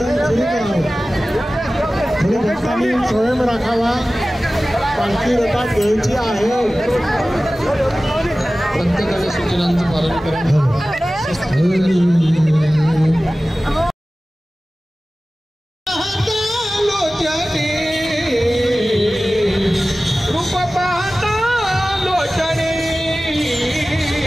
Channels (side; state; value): both; normal; correlation 0.96